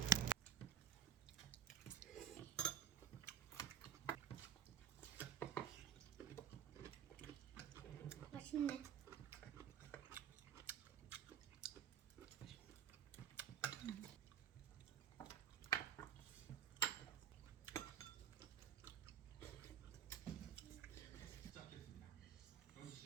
맛있네. 시작했습니다. 현지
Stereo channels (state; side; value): quieter; left; 9.4 dB